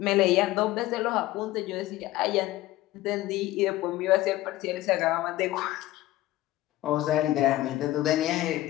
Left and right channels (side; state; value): right; quieter; 16.3 dB